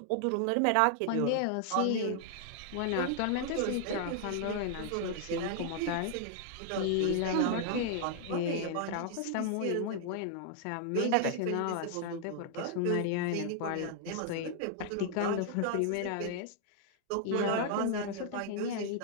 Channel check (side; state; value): both; different; correlation 0.00